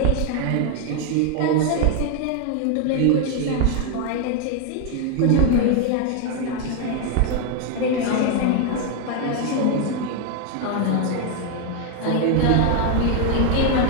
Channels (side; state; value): both; different; correlation 0.01